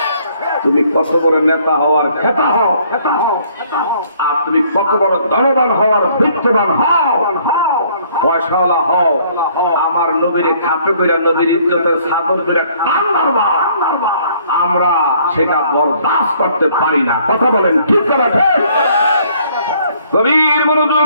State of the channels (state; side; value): inverted; both; correlation -0.62